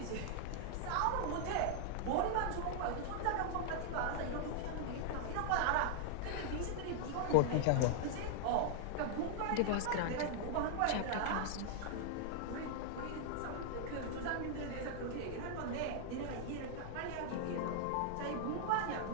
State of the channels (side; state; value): both; different; correlation 0.00